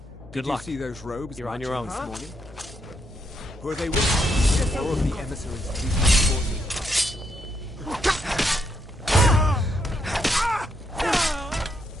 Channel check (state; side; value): normal; both; correlation 0.77